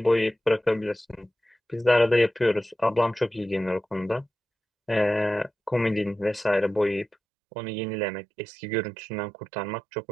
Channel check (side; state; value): left; drops out; at 7.2 s